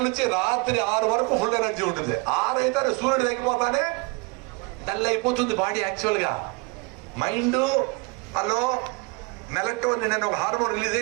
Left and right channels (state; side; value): quieter; left; 29.4 dB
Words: నుంచి రాత్రి 6 వరకు ఫుల్ ఎనర్జీ ఉంటుంది. 6 అయితే సూర్యుడు తగ్గిపోతానే డల్ అయిపోతుంది బాడీ. యాక్చువల్ గా మైండ్ హలో మెలక్టోన్ నేను ఒక హార్మోన్ రిలీజ్